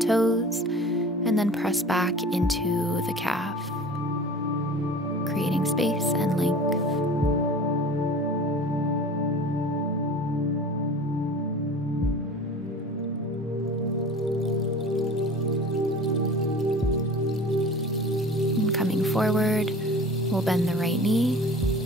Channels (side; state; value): both; normal; correlation 0.40